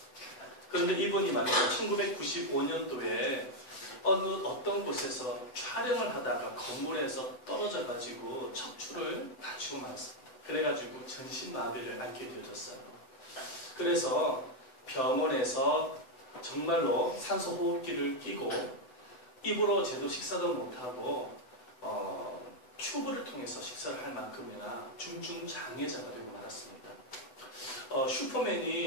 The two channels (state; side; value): late; right; 8.0 ms